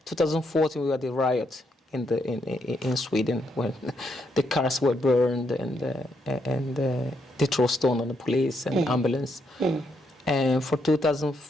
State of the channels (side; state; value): both; normal; correlation 0.77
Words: 2014 we had the riot in Sweden when the cars were burned and they throw stone on the police and ambulance. And for